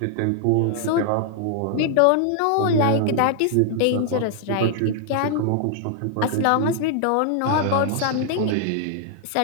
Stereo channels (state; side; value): different; both; correlation 0.00